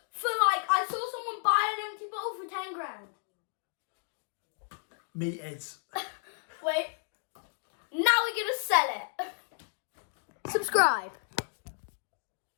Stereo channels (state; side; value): silent; right; digital silence